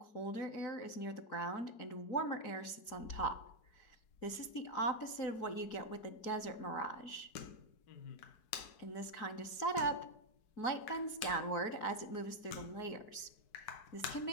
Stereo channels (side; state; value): right; late; 4.6 ms